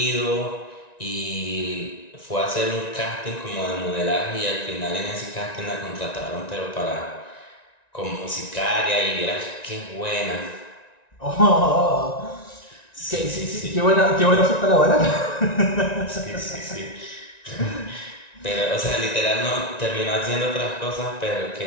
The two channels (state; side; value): late; right; 1.9 ms